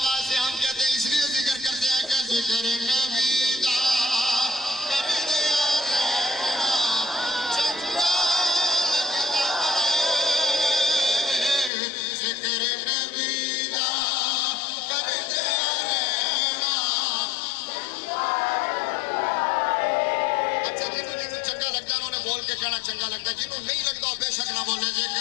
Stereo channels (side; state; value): right; drops out; at 11.7 s